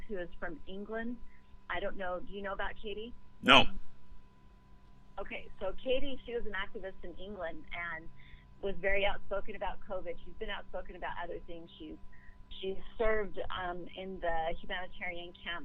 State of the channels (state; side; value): identical; both; correlation 1.00